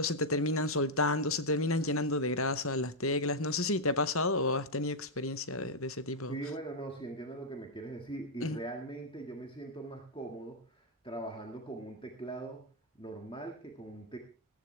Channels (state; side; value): normal; both; correlation -0.04